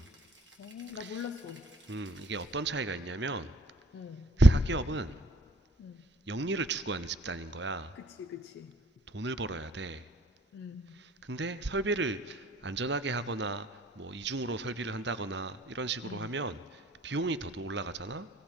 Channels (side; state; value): both; normal; correlation 0.60